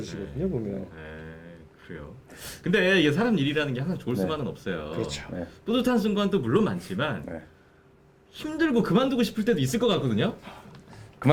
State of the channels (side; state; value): both; identical; correlation 1.00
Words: 보면. 네, 그래요. 근데 이게 사람 일이라는 게 항상 좋을 네. 수만은 없어요. 그렇죠. 네. 뿌듯한 순간도 물론 많지만 네. 힘들고 그만두고 싶을 때도 있을 것 같거든요.